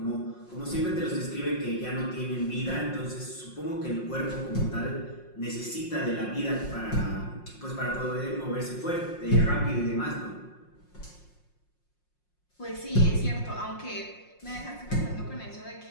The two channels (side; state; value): right; late; 5.6 ms